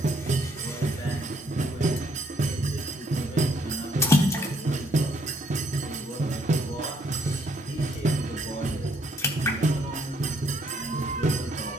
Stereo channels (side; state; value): both; normal; correlation 0.68